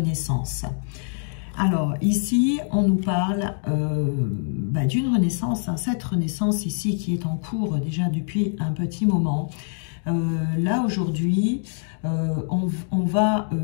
Alors ici, on nous parle d'une renaissance, hein, cette renaissance ici qui est en cours déjà depuis un petit moment. Là aujourd'hui, on va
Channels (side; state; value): right; silent; 60 dB below the other